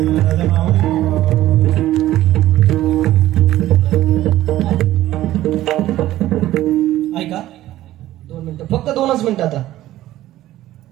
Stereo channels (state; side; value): quieter; left; 14.6 dB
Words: ऐका 2 मिनिटं, फक्त 2च मिनिटं. आता